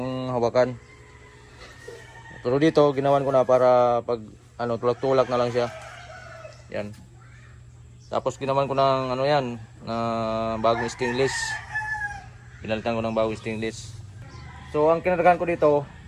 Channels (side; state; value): both; identical; correlation 1.00